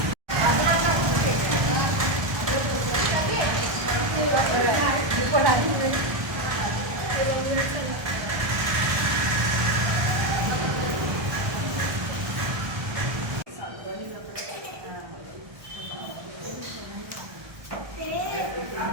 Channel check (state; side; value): late; left; 1.2 ms